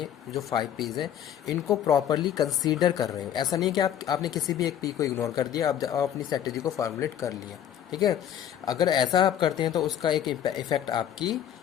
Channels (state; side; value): quieter; right; 10.1 dB